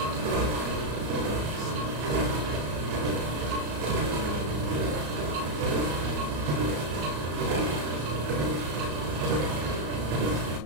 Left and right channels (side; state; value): left; late; 34 ms